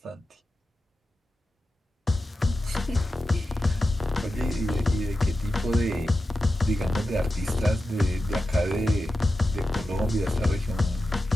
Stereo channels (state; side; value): normal; both; correlation 0.92